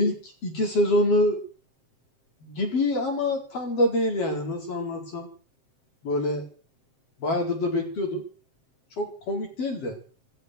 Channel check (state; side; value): late; right; 7.6 ms